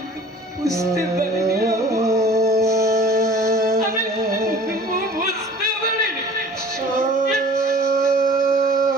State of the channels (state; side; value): normal; both; correlation 0.46